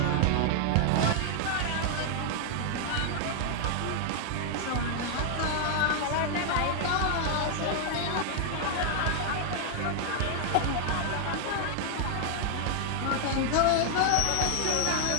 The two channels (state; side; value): different; both; correlation 0.00